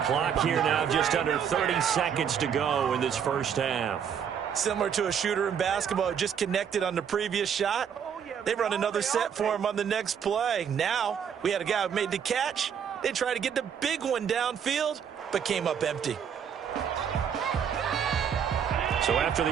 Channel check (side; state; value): left; quieter; 7.9 dB